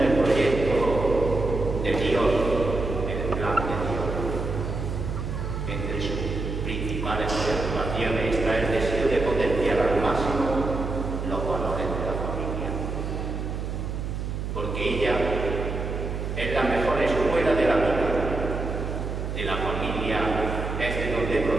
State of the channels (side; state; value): right; noise; hum, 4 dB below the sound